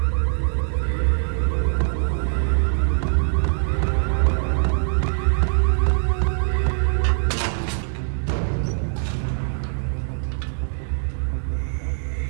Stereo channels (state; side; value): silent; left; digital silence